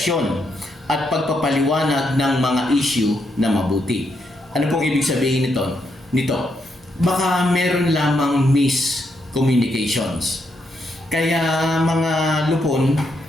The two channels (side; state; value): both; normal; correlation 0.79